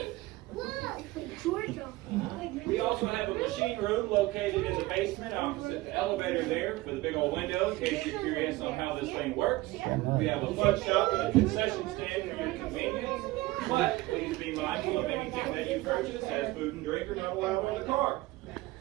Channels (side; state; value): left; quieter; 19.4 dB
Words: Georgia. We also have a machine room located in the basement opposite the elevator there with a big old window in case you're curious on how this thing works. We have a fudge shop and a concession stand for your convenience. But please be mindful of anything that you purchase has food and drink are not allowed on the car.